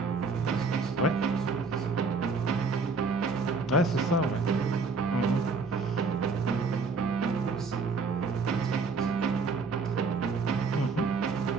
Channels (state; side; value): quieter; left; 4.3 dB